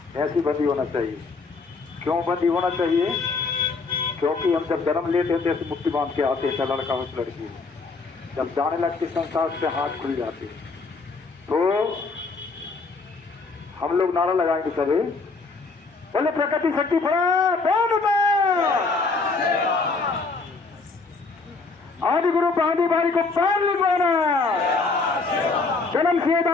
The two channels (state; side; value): quieter; right; 4.1 dB